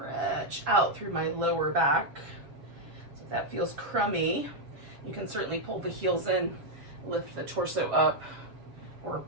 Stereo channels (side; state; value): left; late; 7.4 ms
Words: out through my lower back. So if that feels crummy, you can certainly pull the heels in, lift the torso up, or